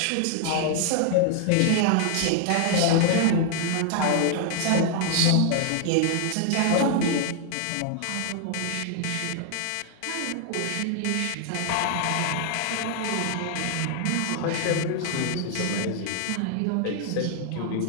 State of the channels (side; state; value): both; different; correlation 0.00